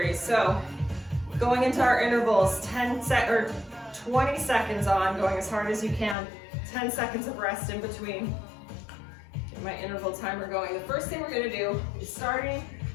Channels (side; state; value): right; drops out; at 6.2 s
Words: So, going into our intervals, 20 seconds on, going as hard as you can. 10 seconds of rest in between. Get my interval timer going. The first thing we're going to do is starting